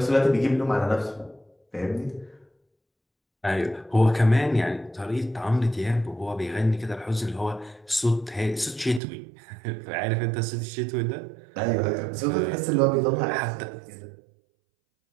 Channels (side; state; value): left; drops out; at 9.0 s